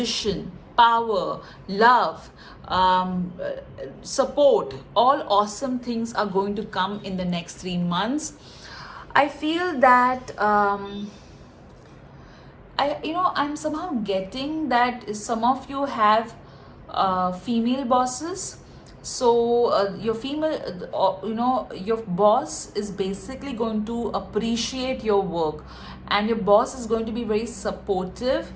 power, love, support, all awesome things are going to come in the next 3 months. I feel that I'm somehow getting that some of you have female bosses. So your female, your boss is basically going to appreciate your work, and your boss is going to be very supportive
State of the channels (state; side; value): identical; both; correlation 1.00